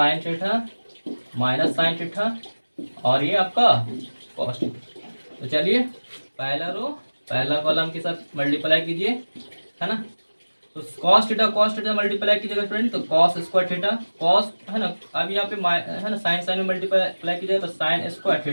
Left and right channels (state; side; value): inverted; both; correlation -1.00